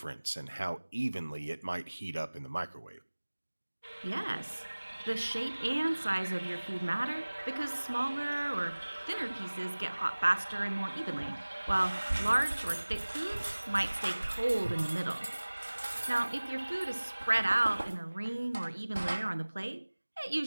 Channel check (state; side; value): inverted; both; correlation -1.00